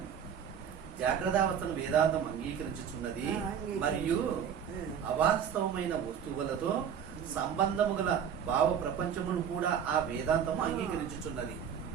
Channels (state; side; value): quieter; left; 8.1 dB